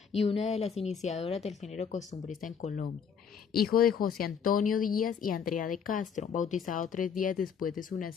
y una de las iniciadoras del género costumbrista en Colombia. Hijo de José Antonio Díaz y Andrea de Castro, bautizado 3 días después de su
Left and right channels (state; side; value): quieter; right; 7.0 dB